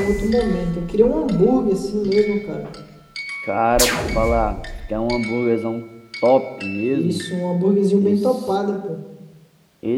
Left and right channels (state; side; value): identical; both; correlation 1.00